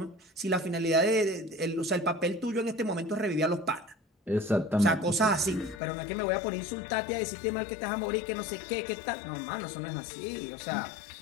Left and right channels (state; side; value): drops out; right; at 5.8 s